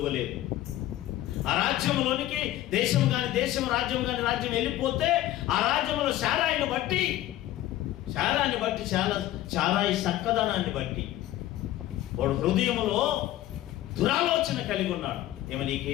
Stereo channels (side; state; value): right; quieter; 14.4 dB